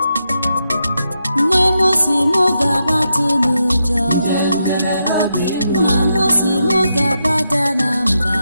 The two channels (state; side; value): inverted; both; correlation -0.84